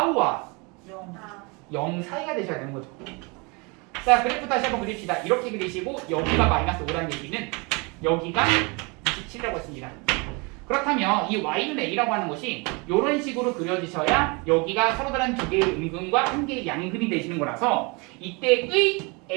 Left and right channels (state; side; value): quieter; left; 29.4 dB